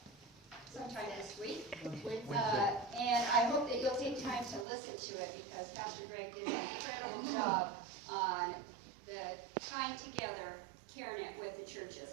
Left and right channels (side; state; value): left; drops out; at 4.7 s